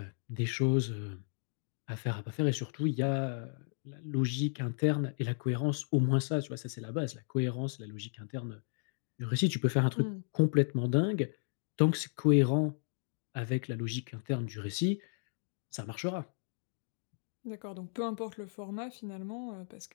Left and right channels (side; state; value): right; silent; digital silence